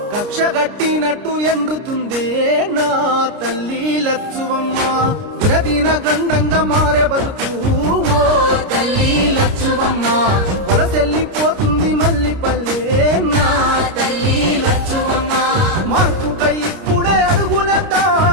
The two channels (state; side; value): late; left; 29 ms